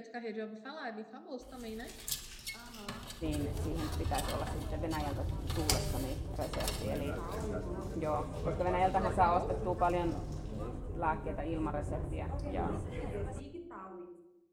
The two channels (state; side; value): identical; both; correlation 1.00